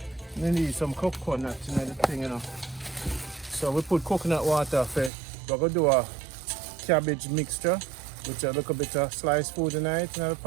We need some coconut in the thing, you know. So we put coconut water for, we're going to do a cabbage mixture with a little bit of sliced food in it in the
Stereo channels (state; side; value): drops out; left; at 5.1 s